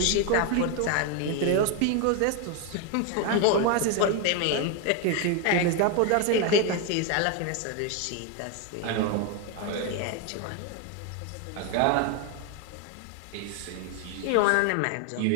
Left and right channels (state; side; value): different; both; correlation 0.01